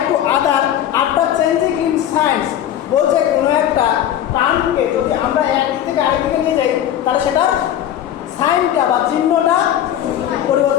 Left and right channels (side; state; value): right; quieter; 11.0 dB